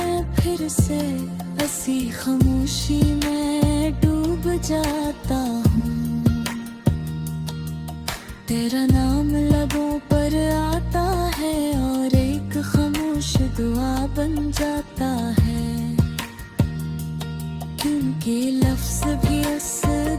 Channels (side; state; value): both; identical; correlation 1.00